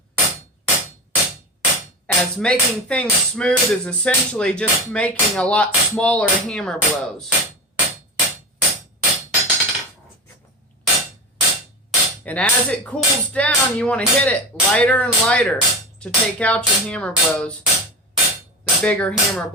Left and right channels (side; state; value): both; normal; correlation 0.23